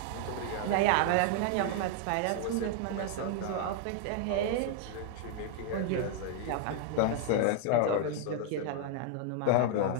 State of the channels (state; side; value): different; both; correlation 0.00